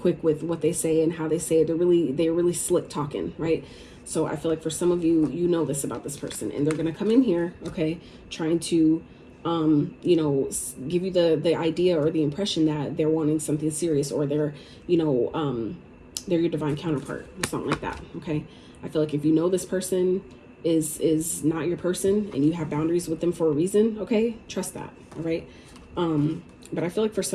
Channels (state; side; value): identical; both; correlation 1.00